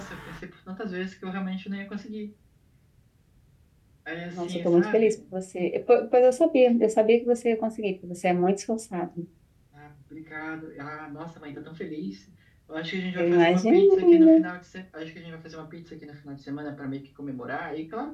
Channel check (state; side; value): identical; both; correlation 1.00